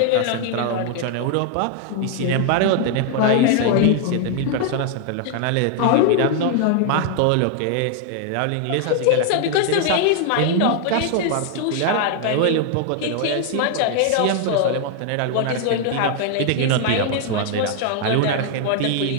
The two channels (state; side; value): different; both; correlation 0.00